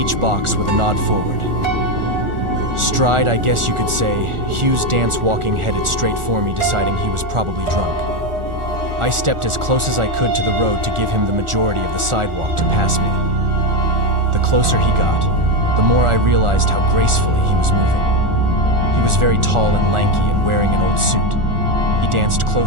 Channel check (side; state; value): left; late; 1.4 ms